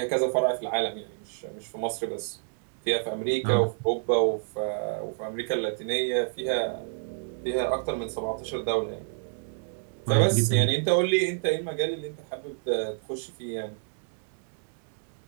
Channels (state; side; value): silent; left; digital silence